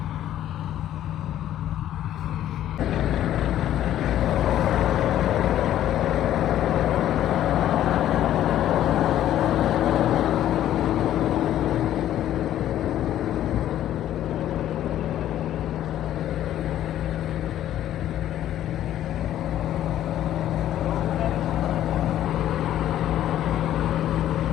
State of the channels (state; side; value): quieter; right; 12.1 dB